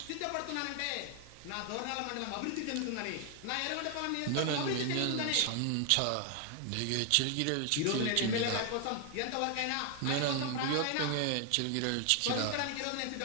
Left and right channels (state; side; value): different; both; correlation 0.00